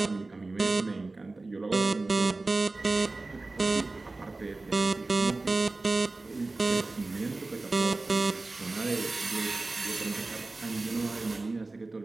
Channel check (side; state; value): left; quieter; 3.3 dB